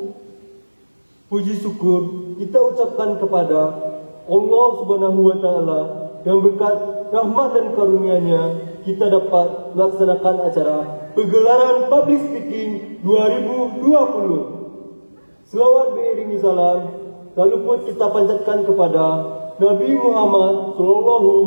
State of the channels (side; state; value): both; inverted; correlation -1.00